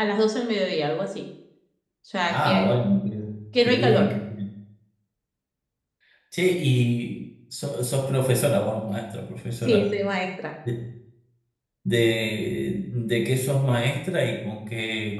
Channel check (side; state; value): both; identical; correlation 1.00